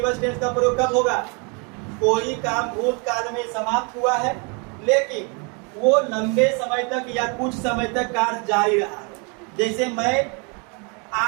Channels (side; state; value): left; quieter; 33.9 dB